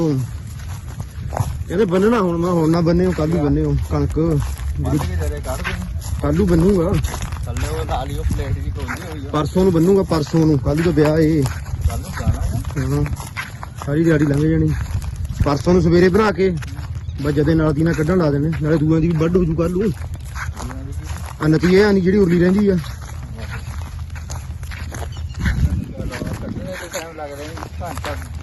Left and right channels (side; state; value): both; identical; correlation 1.00